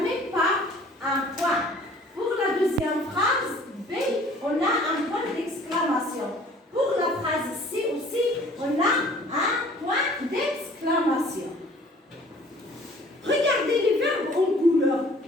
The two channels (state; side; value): normal; both; correlation 0.52